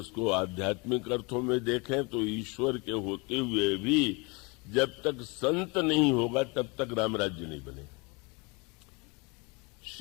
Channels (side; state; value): right; quieter; 29.1 dB